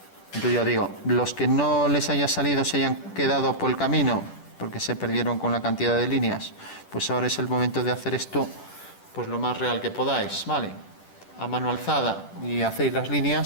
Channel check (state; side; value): late; right; 10 ms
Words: Entonces ya digo, los que no les haya salido, se hayan quedado por el camino, porque se perdieron con la cantidad de líneas, pues ahora es el momento de hacer esto pues lo más real que podáis, ¿vale? A mano alzada, y hacéis las